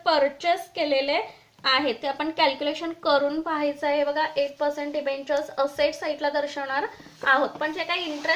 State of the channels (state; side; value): identical; both; correlation 1.00